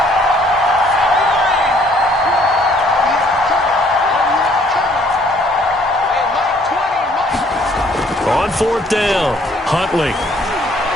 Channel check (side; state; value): both; normal; correlation 0.62